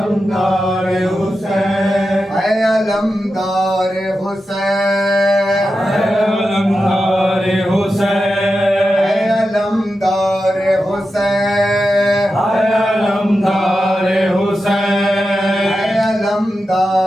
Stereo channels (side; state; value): both; normal; correlation 0.90